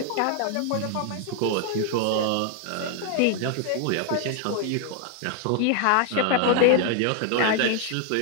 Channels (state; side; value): different; both; correlation 0.00